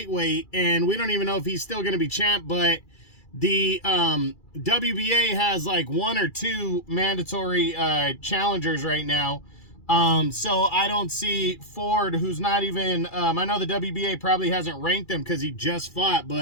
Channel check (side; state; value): right; late; 2.3 ms